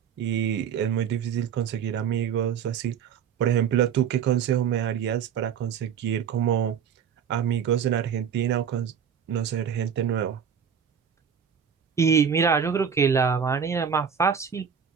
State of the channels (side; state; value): left; quieter; 7.6 dB